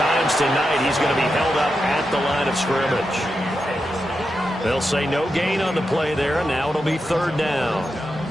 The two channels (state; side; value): normal; both; correlation 0.88